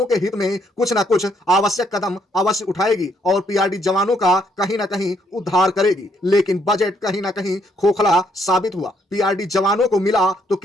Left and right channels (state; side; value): normal; both; correlation 0.71